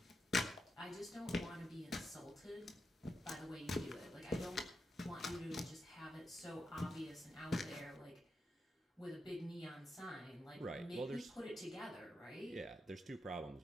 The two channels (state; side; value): normal; both; correlation 0.86